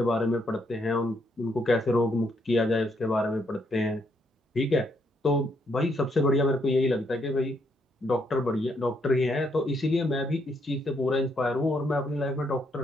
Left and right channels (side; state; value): both; normal; correlation 0.74